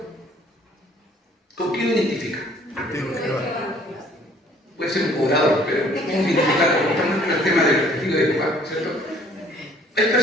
¿Con qué lo identifica? Puede ser un cobrador, pero ¿cómo identificarlo? Estamos en el tema del testigo de Jehová, ¿cierto? Hay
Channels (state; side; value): normal; both; correlation 0.57